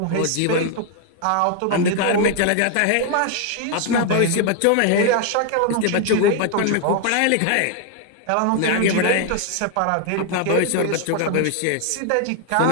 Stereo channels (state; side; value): different; both; correlation 0.00